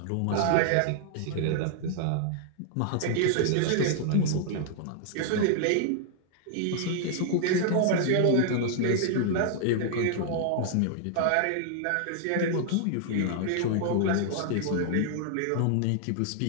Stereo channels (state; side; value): different; both; correlation -0.01